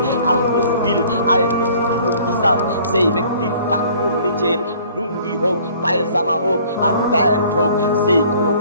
আল মুসবিল। আয় মুসবিলুল ইজার, সেই ব্যক্তির টাকুর নিচে লুঙ্গি হোক, পায়জামা হোক আর প্যান্ট হোক, সেই কোনো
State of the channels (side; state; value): both; inverted; correlation -0.54